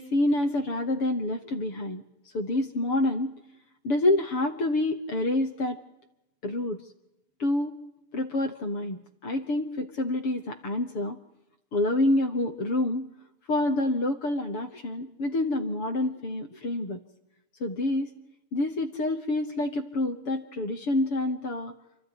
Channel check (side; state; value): right; late; 7.0 ms